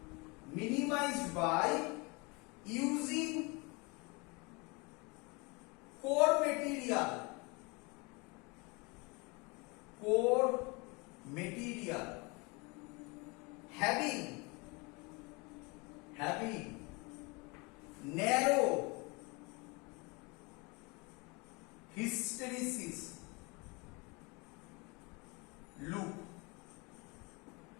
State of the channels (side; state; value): right; quieter; 28.0 dB